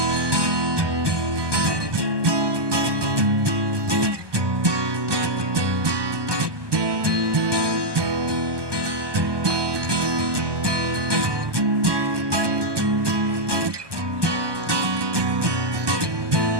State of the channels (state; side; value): late; left; 1.2 ms